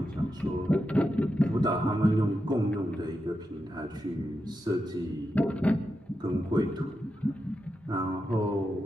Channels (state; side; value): normal; both; correlation 0.88